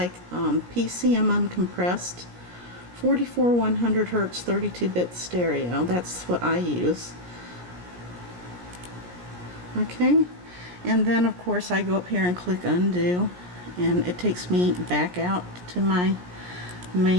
PCM uncompressed, 44 100 Hz 32-bit stereo. That's what I use. Okay, and then of course I go up here and click undo, and it takes me back out to my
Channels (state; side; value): late; left; 17 ms